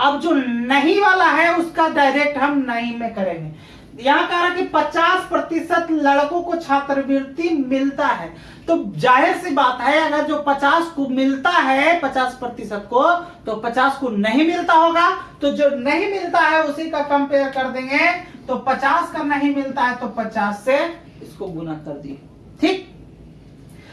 जो नहीं वाला है उसका डायरेक्ट हम नहीं में करेंगे। यहाँ कह रहा कि 50% लड़कों को छात्रवृत्ति मिलता है, तो जाहिर सी बात है अगर जो 50 को मिलता है 50% को, तो 50 को नहीं मिलता होगा। तो जो नहीं मिलता है उसी का कंपेयर कर देंगे। तो 50 का नहीं मिलता है तो 50 से इसको गुना कर दिए। ठीक,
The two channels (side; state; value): both; identical; correlation 1.00